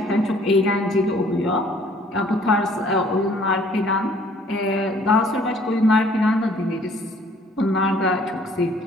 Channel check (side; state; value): both; normal; correlation 0.58